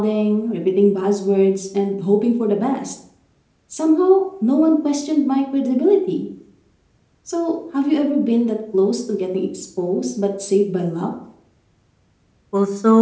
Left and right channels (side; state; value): both; identical; correlation 1.00